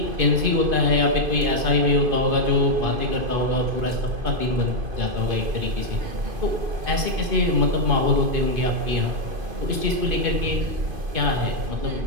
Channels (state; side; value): late; left; 2.5 ms